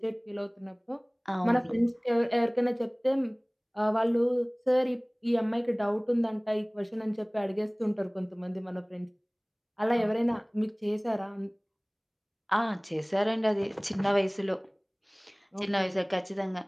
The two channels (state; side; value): identical; both; correlation 1.00